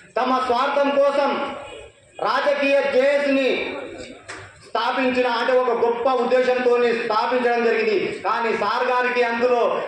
తమ స్వార్థం కోసం రాజకీయ జేఏసీని స్థాపించిన, అంటే ఒక గొప్ప ఉద్దేశంతో స్థాపించడం జరిగింది. కానీ సార్ గారికి అందులో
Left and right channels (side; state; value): both; identical; correlation 1.00